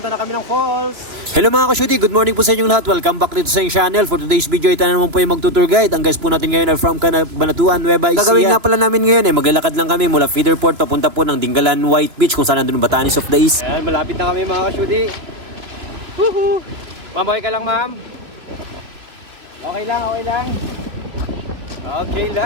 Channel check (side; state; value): left; late; 3.0 ms